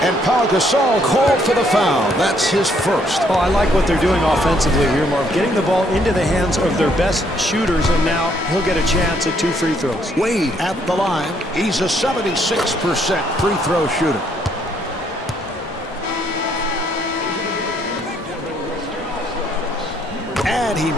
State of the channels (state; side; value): normal; both; correlation 0.69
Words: And Paul Gasol called for the foul. That's his first. Oh, I like what they're doing offensively here, Marv. Getting the ball into the hands of their best shooters, and now he'll get a chance at 2 free throws. Wade at the line. He's a 76% free throw shooter. And he